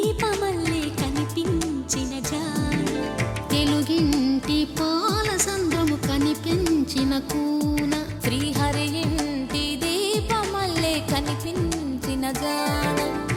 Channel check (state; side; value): identical; both; correlation 1.00